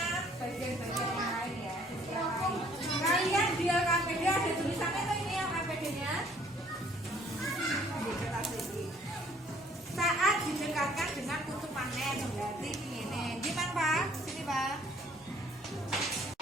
bagian-bagian yang lain ya. Kalian di LKPD ada tulisannya tuh ini LKPD nya saat didekatkan dengan kutub magnet. Berarti ini gimana Pak? Sini Pak.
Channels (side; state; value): both; normal; correlation 0.60